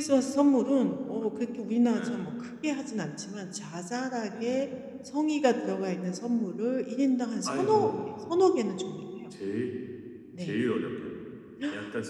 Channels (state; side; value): identical; both; correlation 1.00